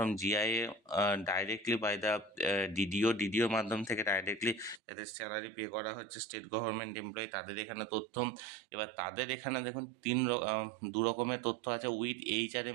GIA directly by the ডিডিওর মাধ্যম থেকে ডাইরেক্টলি যাদের স্যালারি পে করা হচ্ছে স্টেট গভর্নমেন্ট এমপ্লয়ি, তাদের এখানে তথ্য। এবার তাদের এখানে দেখুন দু রকমের তথ্য আছে। With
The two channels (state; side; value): drops out; left; at 4.8 s